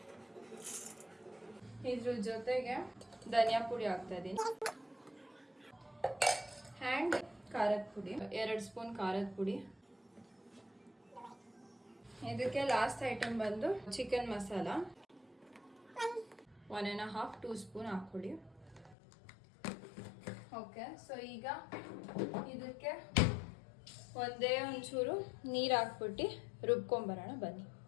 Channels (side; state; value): right; drops out; at 18.9 s